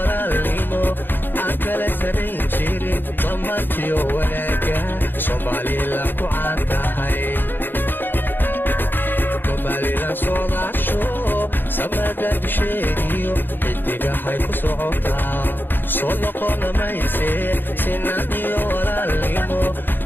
aan kala sanayn jirin dhammaantiyo wanaaga Somaliland ku caan tahay Somaliland soodaasho samada dusheediyo xidigahay ku socotaa soo noqona mayse sinaan iyo walaalnimo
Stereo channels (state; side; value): late; right; 0.095 ms